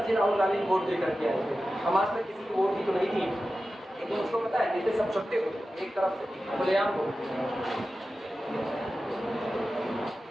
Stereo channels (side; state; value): both; normal; correlation 0.94